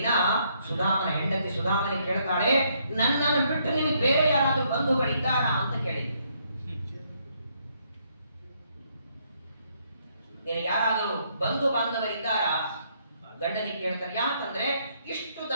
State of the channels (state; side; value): inverted; both; correlation -0.72